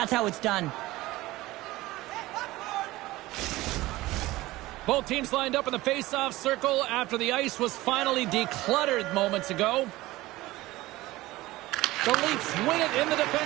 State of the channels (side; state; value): left; quieter; 18.4 dB